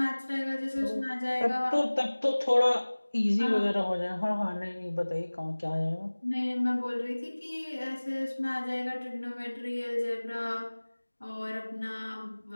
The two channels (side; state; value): both; inverted; correlation -1.00